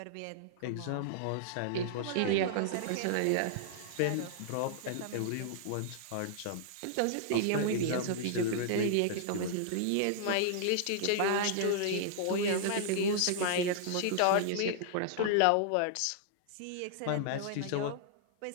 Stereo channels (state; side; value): different; both; correlation -0.01